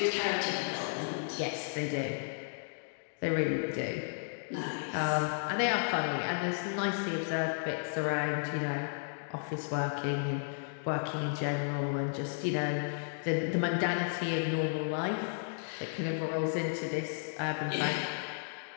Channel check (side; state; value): right; silent; digital silence